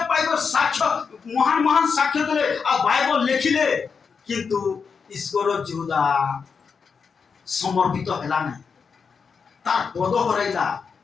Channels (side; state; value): right; quieter; 5.7 dB